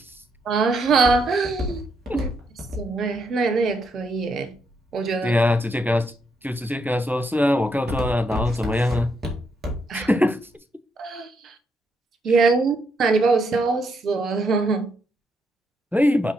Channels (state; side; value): normal; both; correlation 0.77